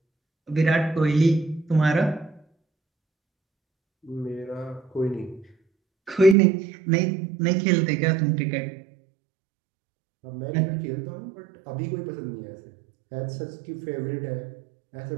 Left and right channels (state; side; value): drops out; left; at 6.4 s